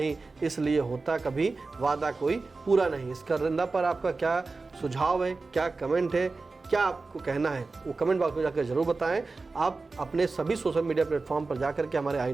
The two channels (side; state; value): left; quieter; 3.8 dB